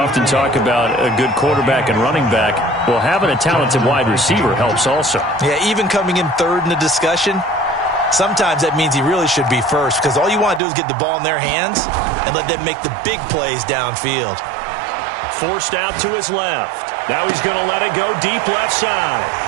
talk about a good quarterback and running back. Well, having a talented wide receiver helps also. Yeah, even coming in third in the discussion, sometimes that means he really should be first because all you want to do is get the ball in their hands and let them make the big plays downfield. Forced out to his left. Now he's going to let it go deep left side.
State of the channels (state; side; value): drops out; left; at 10.6 s